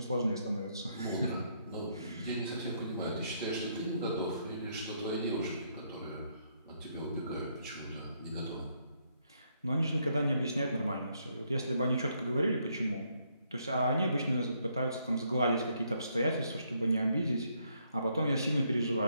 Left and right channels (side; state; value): both; inverted; correlation -0.73